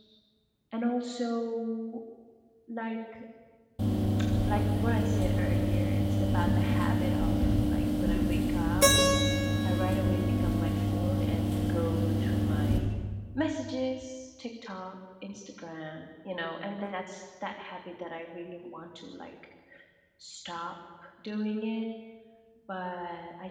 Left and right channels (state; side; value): identical; both; correlation 1.00